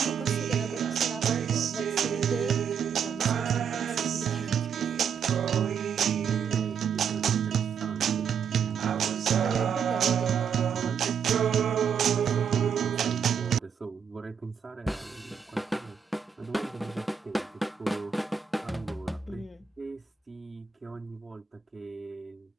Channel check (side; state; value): left; quieter; 7.1 dB